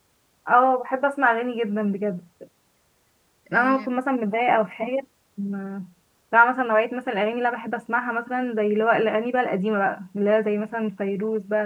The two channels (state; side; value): identical; both; correlation 1.00